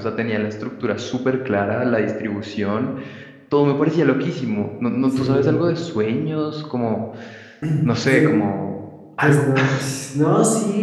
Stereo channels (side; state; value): both; identical; correlation 1.00